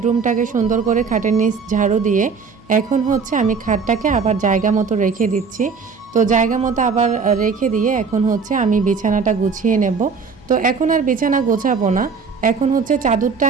সুন্দর করে খাটের নিচ ঝাড়ু দিয়ে এখন হচ্ছে আমি খাটটাকে আবার জায়গা মতো রেখে দিচ্ছি। তো জায়গা মতো আবার রেখে দিয়ে এখন হচ্ছে আমি বিছানাটা গুছিয়ে নেব। তো এখন আর বিছানা গোছাবো না, এখন হচ্ছে চাদরটা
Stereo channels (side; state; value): left; quieter; 5.3 dB